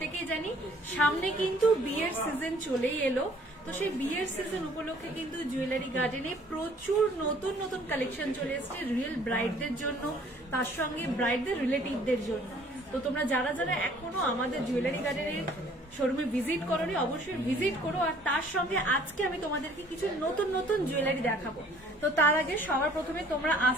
জানি সামনে কিন্তু বিয়ের সিজন চলেই এলো। তো সেই বিয়ের সিজন উপলক্ষে কিন্তু জুয়েলারি গার্ডেনে প্রচুর নতুন নতুন কালেকশন চলে এসেছে রিয়েল ব্রাইডদের জন্য, তার সঙ্গে ব্রাইডদের রিলেটিভদের জন্য। তো তোমরা যারা যারা এখনো আমাদের জুয়েলারি গার্ডেনের শোরুমে ভিজিট করোনি অবশ্যই ভিজিট করো। আর তার সঙ্গে আজকে আমি তোমাদেরকে কিছু নতুন নতুন জুয়েলারি দেখাবো। তো তার আগে সবার প্রথমে তোমরা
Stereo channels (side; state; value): both; normal; correlation 0.56